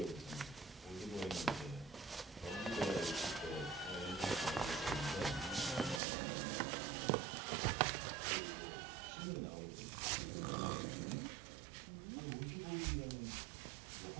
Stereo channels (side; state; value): left; drops out; at 6.0 s